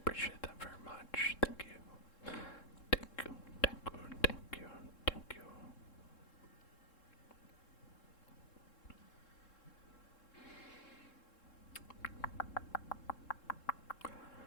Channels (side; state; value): right; late; 3.7 ms